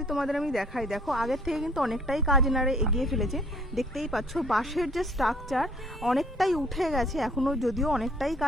তোমাদের আমি দেখাই, দেখো আগের থেকে কিন্তু অনেকটাই কাজ এনারা এগিয়ে ফেলেছে। দেখতেই পাচ্ছ বাঁশের যে স্ট্রাকচার অনেকটাই উঠে গেছে, এখনও যদিও অনেকটাই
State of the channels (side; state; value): both; normal; correlation 0.58